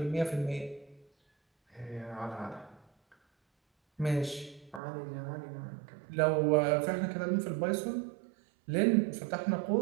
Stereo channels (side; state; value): left; drops out; at 4.8 s